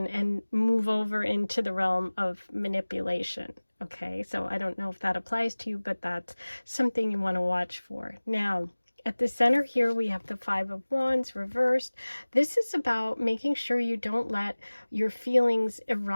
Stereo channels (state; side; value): inverted; both; correlation -1.00